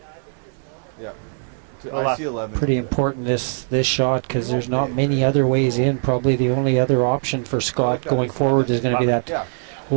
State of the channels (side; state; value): left; silent; digital silence